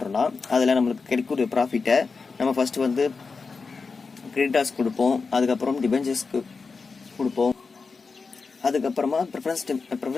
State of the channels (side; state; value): right; quieter; 4.6 dB